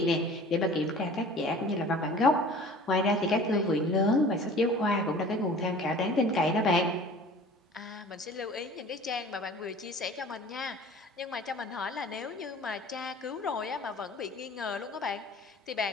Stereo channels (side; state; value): both; normal; correlation 0.45